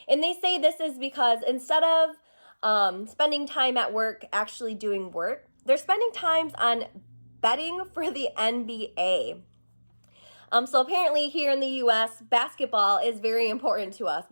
And they say this is because instead of spending time at work actually doing work, they're spending time on betting for the NBA. So apparently here in the US, basketball is very important to us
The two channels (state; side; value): inverted; both; correlation -1.00